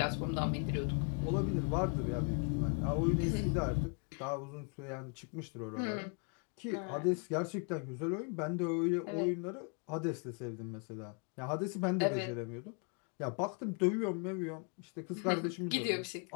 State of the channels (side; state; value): right; quieter; 38.7 dB